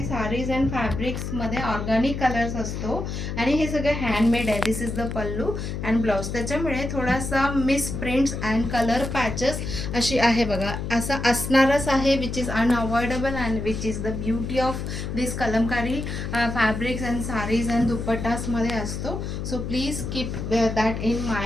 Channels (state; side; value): noise; left; hum, 5 dB below the sound